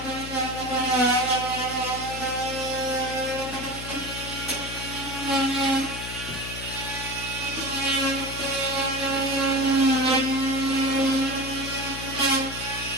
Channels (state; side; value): noise; left; hum, 10 dB below the sound